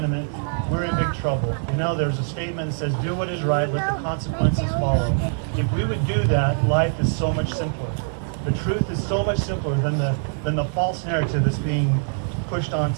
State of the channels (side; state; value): left; silent; digital silence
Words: we're in big trouble. You know, there's a statement that says, do what is right, let the consequences follow. If we would do that, life is so much simpler. The truth is so much simpler than the false narrative that's being pushed